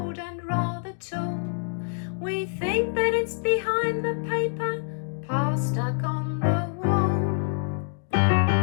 and rather tall. We think that it's behind the paper pile stuck on the wall.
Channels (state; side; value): silent; right; 61 dB below the other